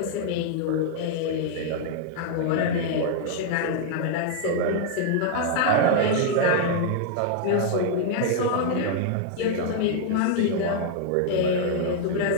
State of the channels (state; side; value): different; both; correlation 0.00